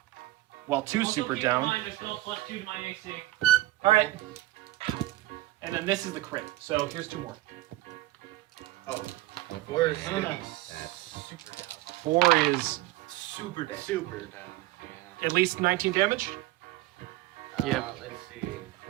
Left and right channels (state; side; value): quieter; left; 17.8 dB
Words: Well, 2's Also, super keep down. in mind, there's still +2 to my AC. Alright. And then this is the crit. So here's 2 more. Oh. 4 is gonna be That's super down. 4 is Super down. Super down. Yeah. at least 19 damage. Let's see.